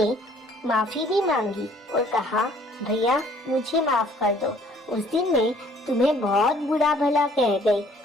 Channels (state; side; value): normal; both; correlation 0.59